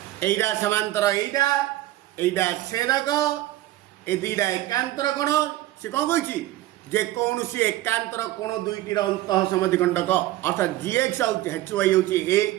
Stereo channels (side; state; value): left; quieter; 15.6 dB